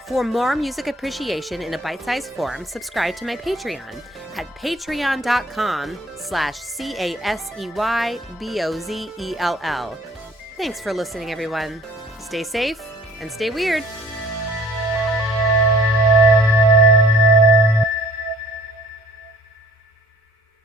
For more music appreciation in a bite-sized form, subscribe to my Patreon at patreon.com/CASEYBOZELL. Thanks for listening, everyone. Stay safe and stay weird.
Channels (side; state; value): both; normal; correlation 0.54